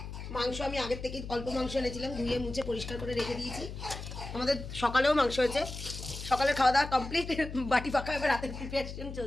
মাংস আমি আগের থেকে অল্প মাংস এনেছিলাম, ধুয়ে মুছে পরিষ্কার করে রেখে দিয়েছি। আমাদের সকালেও মাংস হয়েছে, সকালের খাওয়া দাওয়া কমপ্লিট, বাটি ফাঁকা, এবার রাতের প্রিপারেশন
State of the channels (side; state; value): left; noise; hum, 9 dB below the sound